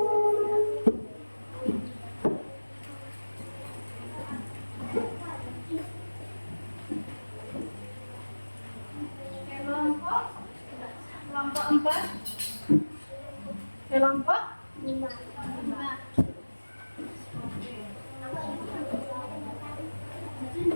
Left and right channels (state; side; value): inverted; both; correlation -1.00